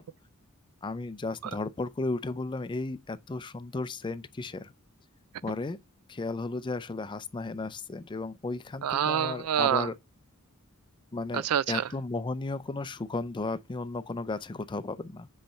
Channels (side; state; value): both; normal; correlation 0.33